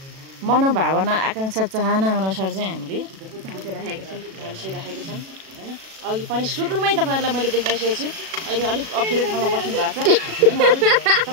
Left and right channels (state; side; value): late; left; 37 ms